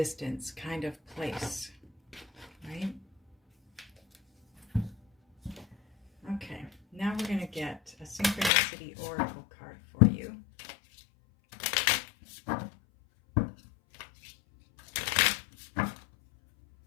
kind of place. Right? Okay. Now we're going to get a Synchronicity Oracle card for you.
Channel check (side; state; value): right; drops out; at 8.5 s